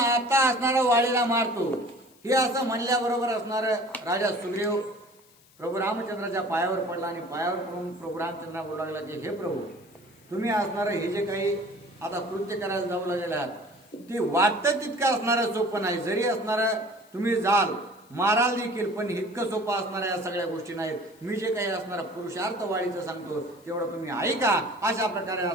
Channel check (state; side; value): noise; left; hiss, 29 dB below the sound